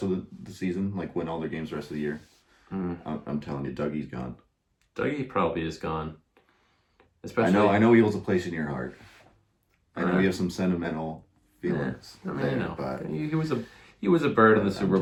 of the season, like win all their games the rest of the year. I'm telling you, Dougie's gone. Dougie probably is gone. Especially, I know he holds a place in your heart. I know you have some sentimental feelings. Yeah, I mean, know. But he was a bird in the Super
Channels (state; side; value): identical; both; correlation 1.00